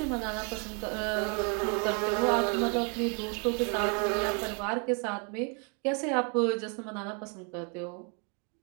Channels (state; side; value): quieter; left; 36.6 dB